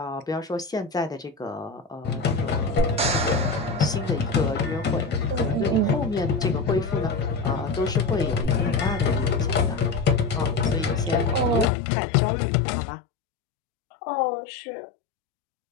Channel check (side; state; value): right; drops out; at 11.7 s